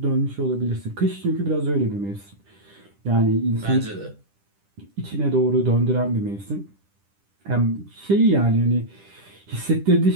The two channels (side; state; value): left; late; 10 ms